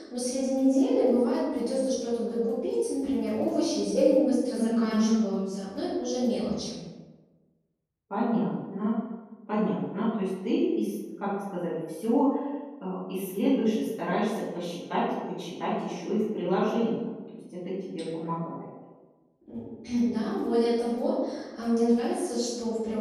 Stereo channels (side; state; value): both; identical; correlation 1.00